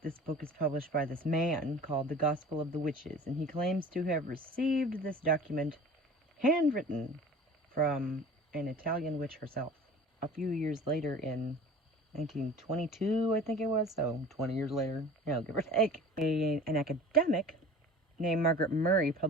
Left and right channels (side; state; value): both; normal; correlation 0.42